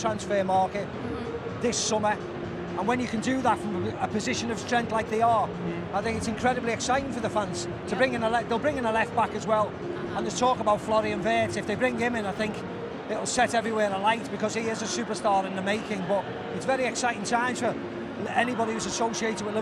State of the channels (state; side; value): identical; both; correlation 1.00